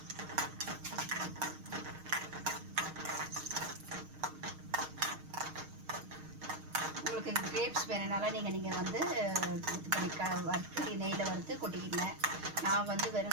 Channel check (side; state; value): left; late; 6.5 ms